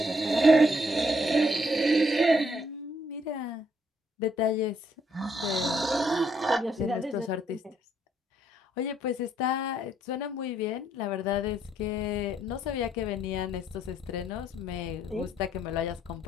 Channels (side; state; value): both; normal; correlation 0.70